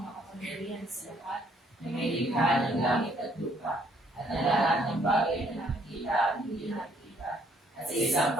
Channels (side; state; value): both; normal; correlation 0.66